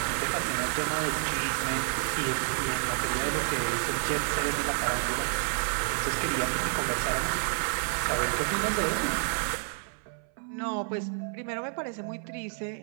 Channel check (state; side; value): silent; left; 58 dB below the other